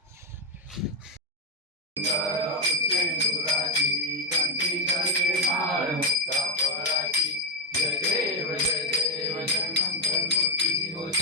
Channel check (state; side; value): normal; both; correlation 0.06